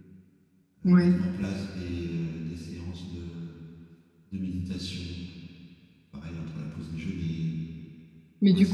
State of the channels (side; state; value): both; identical; correlation 1.00